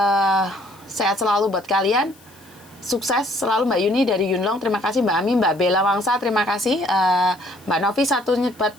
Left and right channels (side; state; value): left; noise; hiss, 27 dB below the sound